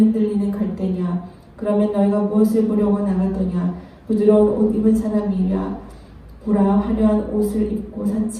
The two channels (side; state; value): both; identical; correlation 1.00